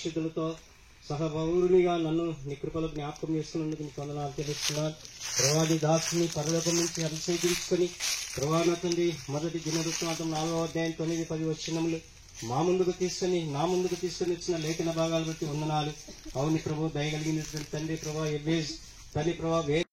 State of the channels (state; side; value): identical; both; correlation 1.00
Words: సహపౌరునిగా నన్ను నీ కృపలో జ్ఞాపకం చేసుకున్నందుకు నీకు వందనాలు తెలుస్తున్నాను ప్రభా. నీ దాసుని పరలోకం నుంచి అభిషేకించుకుని ప్రభా నా తండ్రి మొదటి దినవృత్తాంతం 4వ అధ్యాయం 9-10 వచనములు నా ముందుకు తీసుకుని వచ్చిన లేఖన భాగాలు బట్టి వందనాలు. అవుని ప్రభు దయగలిగినటువంటి తండ్రి ప్రభా ఎబ్బేజ్ తండ్రి ప్రభా